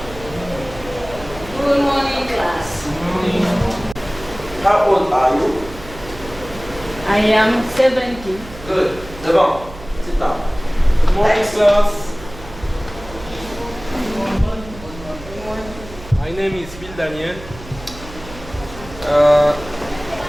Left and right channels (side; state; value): right; noise; hum, 16 dB below the sound